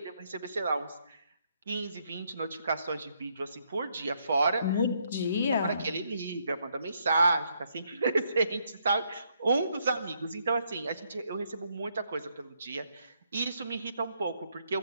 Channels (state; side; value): inverted; both; correlation -0.74